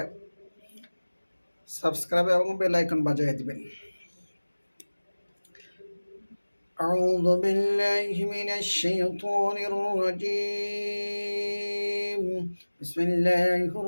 সাবস্ক্রাইব এবং বেল আইকন বাজিয়ে দিবেন। أعوذ بالله من الشيطان الرجيم. بسم الله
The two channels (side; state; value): both; inverted; correlation -1.00